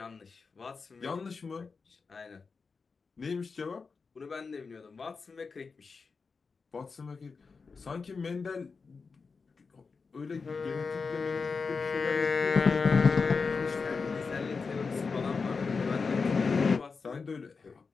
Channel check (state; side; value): quieter; right; 4.8 dB